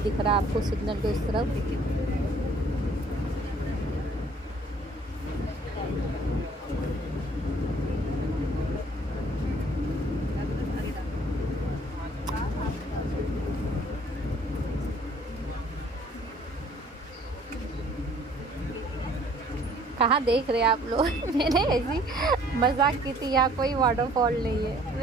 दिख रहा है आपको सिग्नल के उस तरफ। कहाँ देख रहे हैं आप लोग? मैंने ऐसी मजाक की थी, यहाँ कोई वाटरफॉल नहीं है।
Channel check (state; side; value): normal; both; correlation 0.57